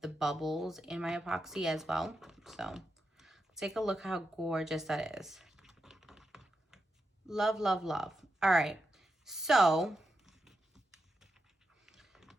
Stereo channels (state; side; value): normal; both; correlation 0.87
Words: the bubbles in my epoxy as well. So take a look how gorgeous that is. Love, love, love. All right, so